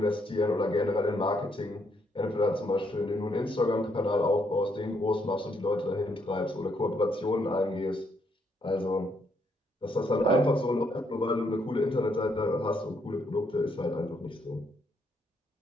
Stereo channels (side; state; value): both; normal; correlation 0.74